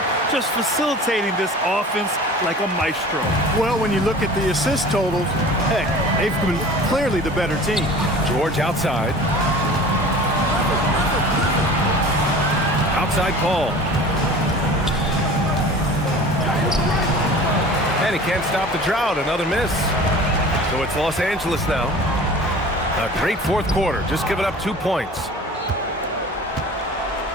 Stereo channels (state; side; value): normal; both; correlation 0.41